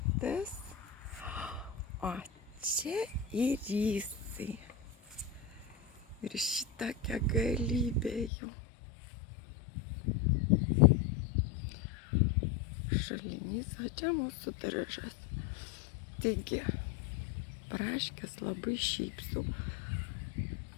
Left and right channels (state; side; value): drops out; right; at 8.3 s